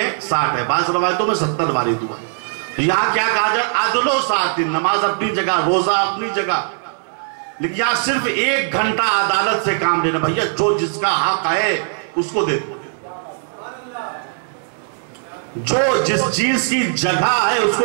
60 है, बाज़ रवायतों में 70 वारिद हुआ है। यहां क्या कहा जाए? अदलो सातिन, नमाज अपनी जगह, रोजा अपनी जगह, लेकिन यहां सिर्फ 1 घंटा अदालत से काम लेना। भैया जो जिसका हक है उसको दे दो, जो जिस चीज की जगह है उसको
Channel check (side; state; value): left; silent; digital silence